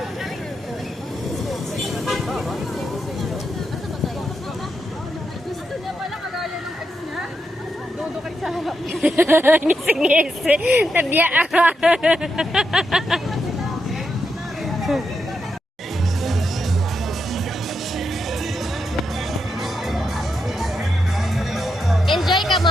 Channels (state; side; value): normal; both; correlation 0.84